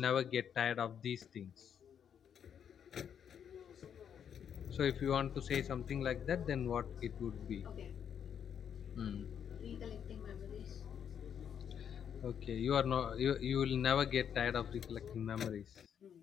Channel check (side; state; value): right; quieter; 8.3 dB